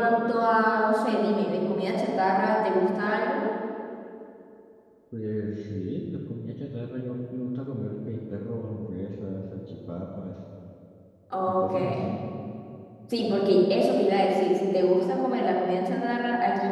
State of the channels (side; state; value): both; identical; correlation 1.00